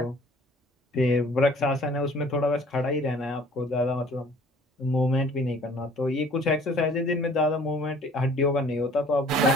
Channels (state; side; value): normal; both; correlation 0.53